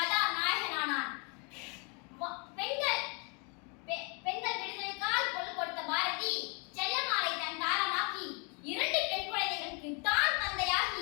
நாயகனானான். பெண்கள் விடுதலைக்கால் கொள் கொடுத்த பாரதி செல்லமாலை தன் தாரமாக்கி 2 பெண் குழந்தைகளுக்கு தான்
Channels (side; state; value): right; quieter; 34.0 dB